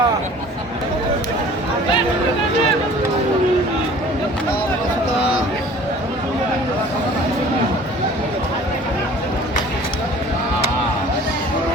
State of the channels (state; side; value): normal; both; correlation 0.48